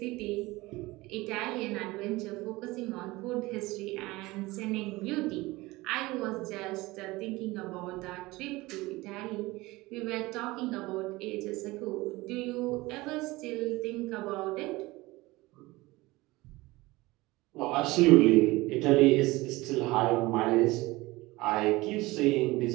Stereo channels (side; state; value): left; quieter; 20.7 dB